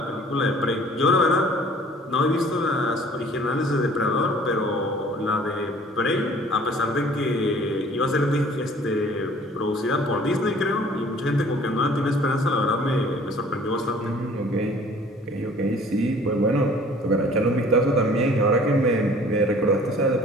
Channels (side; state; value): both; normal; correlation 0.52